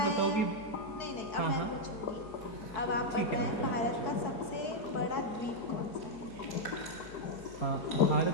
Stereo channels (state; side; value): late; right; 4.6 ms